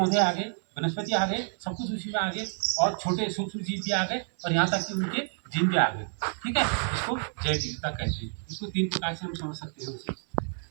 आ गए, वनस्पति आ गए, सब कुछ उसी में आ गए और छोटे सूक्ष्म जीव भी आ गए और यहाँ तक कि उनके जीन भी आ गए। ठीक है, इसको जैव विविधता कहते हैं। इसको 3 प्रकार से हम समझ सकते हैं उसे।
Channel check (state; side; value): silent; left; 59 dB below the other